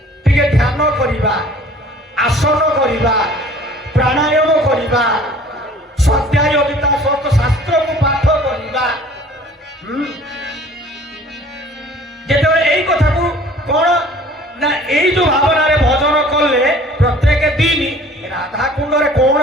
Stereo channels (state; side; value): normal; both; correlation 0.50